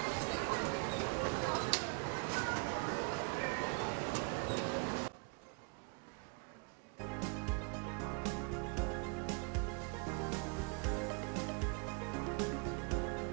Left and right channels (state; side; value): quieter; left; 32.0 dB